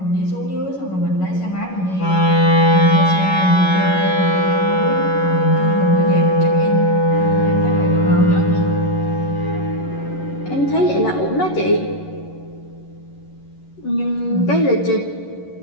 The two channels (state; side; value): late; right; 11 ms